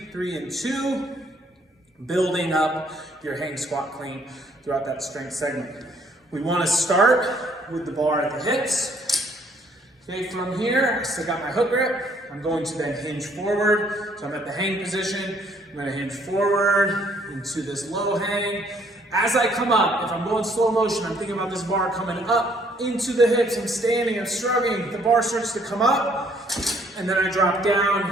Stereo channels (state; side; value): normal; both; correlation 0.64